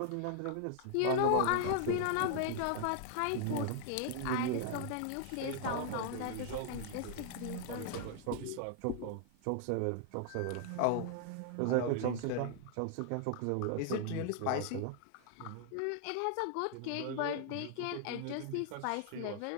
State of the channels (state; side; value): different; both; correlation 0.00